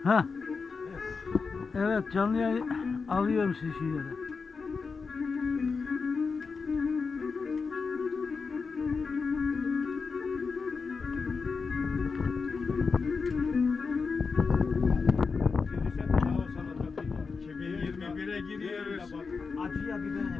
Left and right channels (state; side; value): quieter; right; 4.9 dB